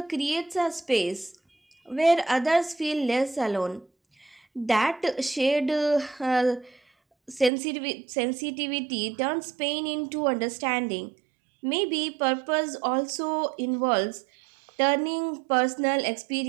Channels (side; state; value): left; drops out; at 7.5 s